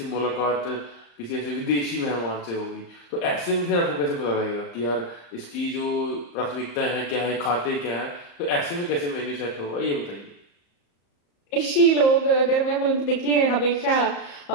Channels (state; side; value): late; right; 34 ms